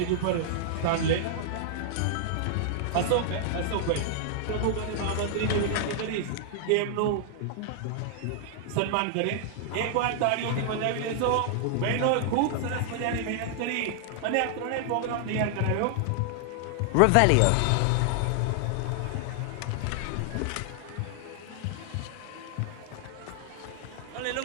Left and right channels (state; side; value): different; both; correlation -0.01